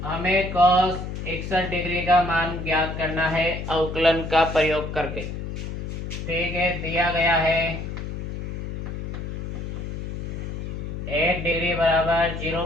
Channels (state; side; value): noise; left; hum, 6 dB below the sound